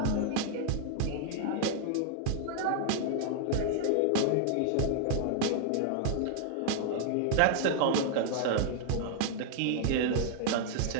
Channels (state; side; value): different; both; correlation -0.01